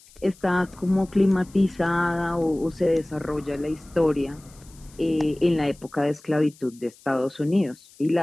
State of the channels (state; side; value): noise; left; hiss, 25 dB below the sound